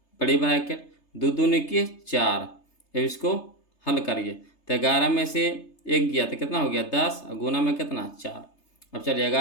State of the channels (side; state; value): right; late; 3.3 ms